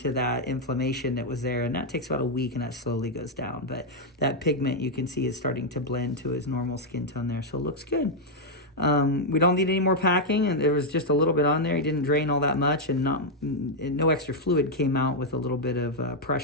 that inflammation that was there, and that takes about a week, and that slowly goes down. But that pigment, you can see, is starting to blend to his normal skin tone there, so it looks good. We don't need any more packing, and there was just a little bit on there. He didn't drain all that much, and no extra fluid came out with a little bit of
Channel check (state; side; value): normal; both; correlation -0.01